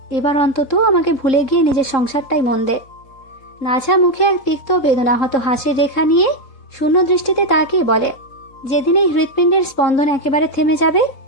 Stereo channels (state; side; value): late; right; 3.8 ms